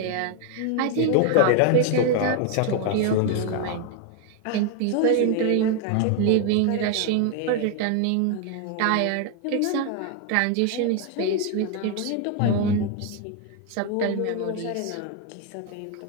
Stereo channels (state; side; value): different; both; correlation 0.00